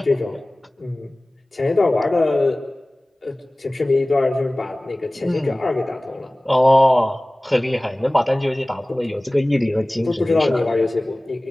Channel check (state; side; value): normal; both; correlation 0.98